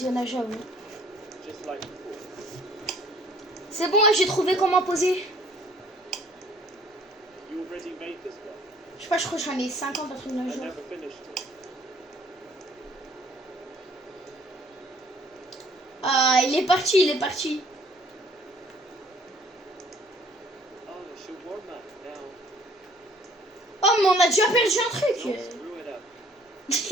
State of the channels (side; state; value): both; normal; correlation 0.58